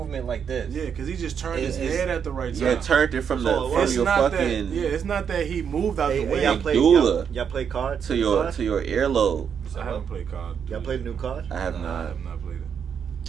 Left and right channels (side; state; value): left; quieter; 7.4 dB